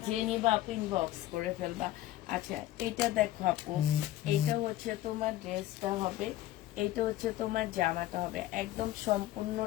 যে নিবা আপু ইনবক্স করে ফেলবা। আচ্ছা, এইটা দেখো আপু, এইটা হচ্ছে তোমার ড্রেসটা হবে, এইটা হচ্ছে তোমার জামাটা হবে, একদম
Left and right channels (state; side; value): quieter; right; 14.7 dB